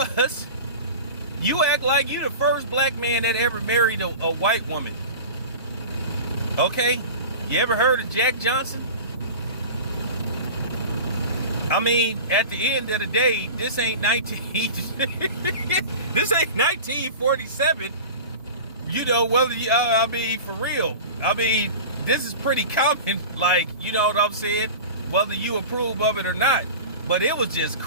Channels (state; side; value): inverted; both; correlation -0.34